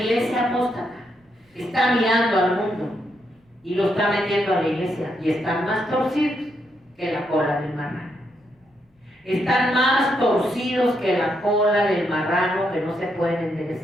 apóstata está mirando al mundo y lo está metiendo a la iglesia, y están más torcidos que la cola del marrano. Están más torcidos que la cola del marrano que no se pueden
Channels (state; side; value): normal; both; correlation 0.79